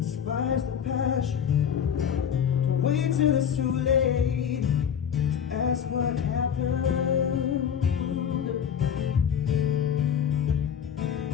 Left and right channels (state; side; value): quieter; right; 8.3 dB